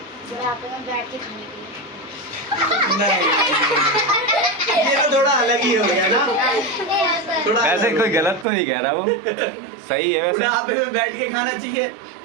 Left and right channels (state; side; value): drops out; left; at 8.5 s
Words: बुढ़ापे में बैठ के खाने के लिए। नहीं, ये तो थोड़ा अलग ही हो गया ना। थोड़ा वैसे कोई गलत तो नहीं कह रहा वो, सही है वैसे। बुढ़ापे में बैठ के खाना चाहिए।